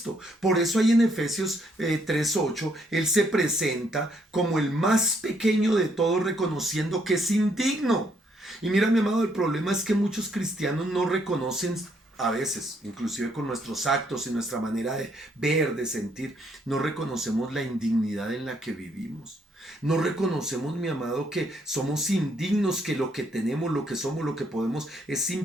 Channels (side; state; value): both; normal; correlation 0.71